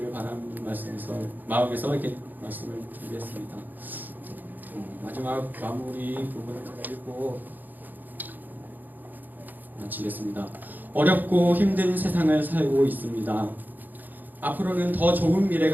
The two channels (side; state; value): left; late; 0.086 ms